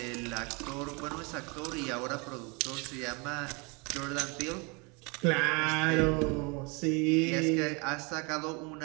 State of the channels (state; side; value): quieter; left; 30.1 dB